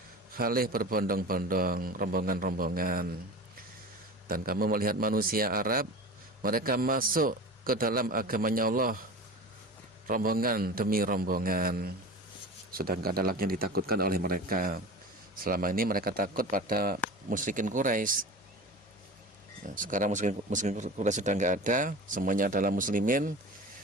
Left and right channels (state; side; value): normal; both; correlation 0.33